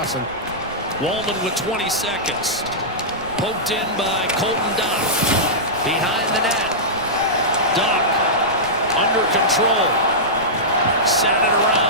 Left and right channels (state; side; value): noise; right; rumble, 22 dB below the sound